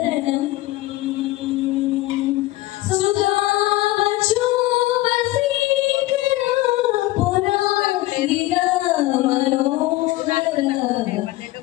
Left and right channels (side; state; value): right; quieter; 17.8 dB